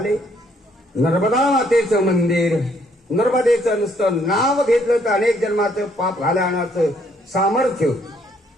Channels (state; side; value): normal; both; correlation 0.68